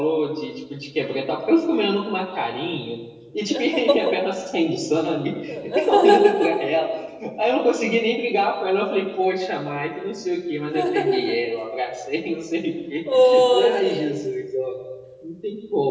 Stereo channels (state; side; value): identical; both; correlation 1.00